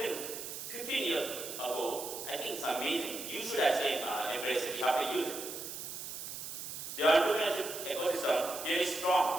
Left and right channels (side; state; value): right; noise; hiss, 8 dB below the sound